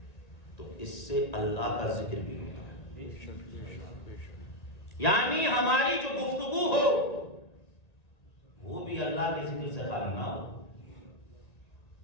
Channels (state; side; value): late; right; 1.9 ms